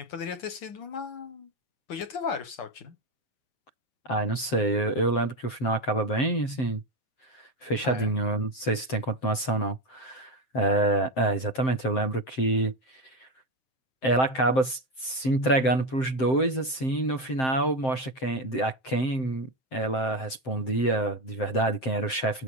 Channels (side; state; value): right; late; 7.7 ms